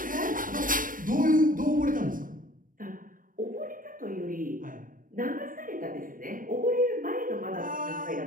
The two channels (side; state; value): left; late; 0.40 ms